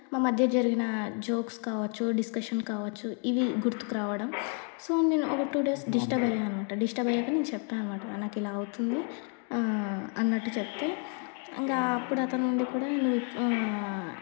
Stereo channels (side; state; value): right; quieter; 39.4 dB